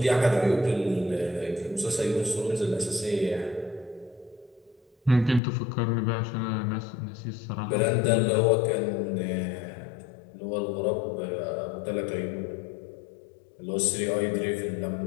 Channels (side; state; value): right; drops out; at 5.4 s